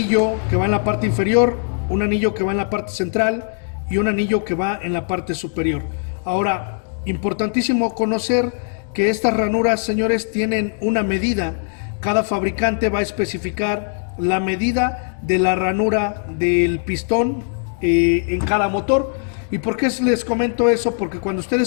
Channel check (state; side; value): silent; right; digital silence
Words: que va en la parte inferior, un anillo que va en la parte central y un anillo que va en la parte superior. Ahora, importantísimo conocer que estas ranuras, señores, tienen una medida. Cada fabricante va a especificar la medida de la ranura del pistón en cada motor. ¿Y por qué les comento eso? Porque cuando